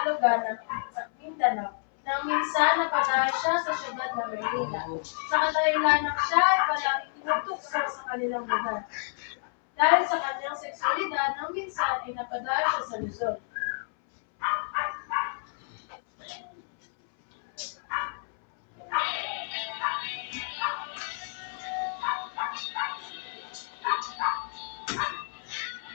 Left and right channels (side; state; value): right; silent; 58 dB below the other